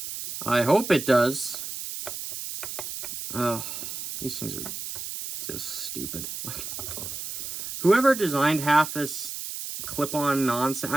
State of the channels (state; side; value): noise; right; hiss, 7 dB below the sound